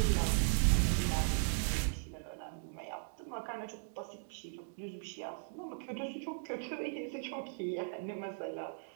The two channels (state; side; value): silent; left; digital silence